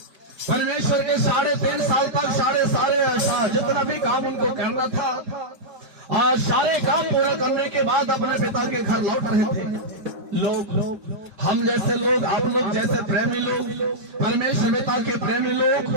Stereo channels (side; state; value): left; late; 4.6 ms